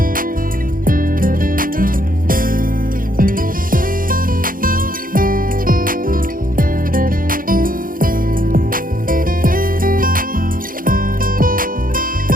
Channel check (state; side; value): late; left; 0.41 ms